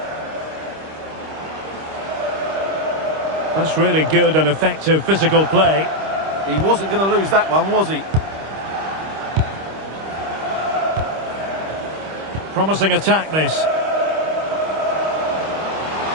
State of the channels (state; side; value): late; left; 25 ms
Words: That's really good and effective physical play. He wasn't going to lose that one, was he? Promising attack, this.